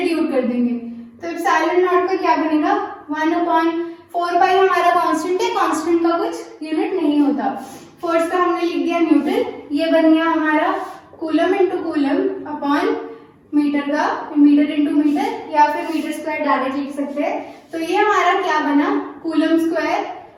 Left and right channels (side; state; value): both; identical; correlation 1.00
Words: कर देंगे। तो एप्सिलॉन नॉट का क्या बनेगा, 1/4π हमारा कांस्टेंट है, कांस्टेंट का कुछ यूनिट नहीं होता। फोर्स का हमने लिख दिया न्यूटन, ये बन गया हमारा coulomb into coulomb upon metre का मीटर इंटू मीटर, या फिर मीटर स्क्वायर डायरेक्ट लिख सकते हैं। तो ये हमारा क्या बना, कूलम स्क्वायर